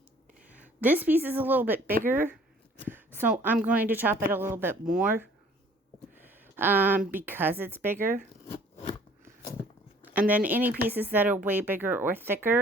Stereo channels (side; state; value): both; normal; correlation 0.55